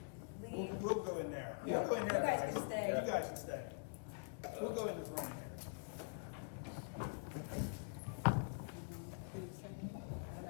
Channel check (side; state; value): right; quieter; 39.2 dB